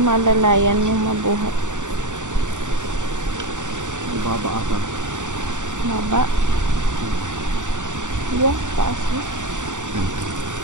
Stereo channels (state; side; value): late; left; 0.86 ms